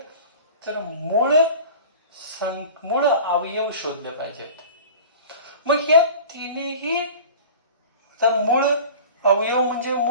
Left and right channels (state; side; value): inverted; both; correlation -0.39